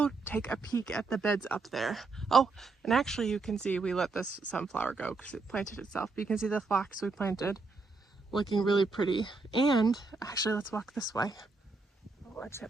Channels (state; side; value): quieter; left; 3.9 dB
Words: take a peek at the beds up there. Oh, and actually you can see we let this sunflower go because it planted itself. But you can see the phlox we planted looking really pretty. And actually, let's walk this way. Oh, what's